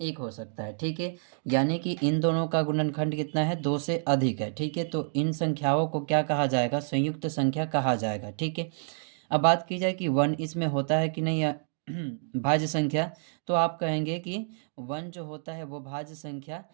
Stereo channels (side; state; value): left; silent; digital silence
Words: हो सकता है। ठीक है, यानी कि इन दोनों का गुणनखंड कितना है, 2 से अधिक है। ठीक है, तो इन संख्याओं को क्या कहा जाएगा, संयुक्त संख्या कहा जाएगा। ठीक है, अब बात की जाए कि 1 इसमें होता है कि नहीं भाज्य संख्या, तो आप कहेंगे कि 1 जो होता है वो भाज्य संख्या